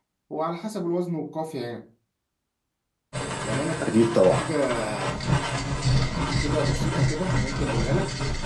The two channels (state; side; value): identical; both; correlation 1.00